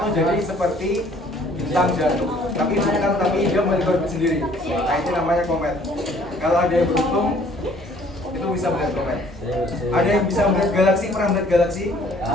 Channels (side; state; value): both; normal; correlation 0.58